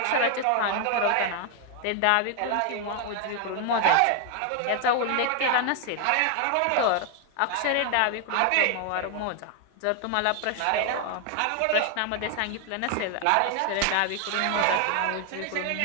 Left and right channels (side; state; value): both; different; correlation 0.00